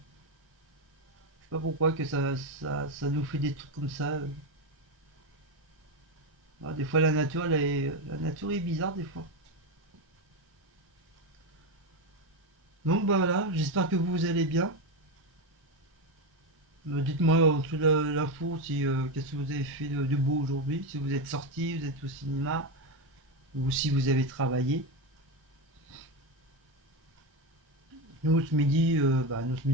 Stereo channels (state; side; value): normal; both; correlation 0.12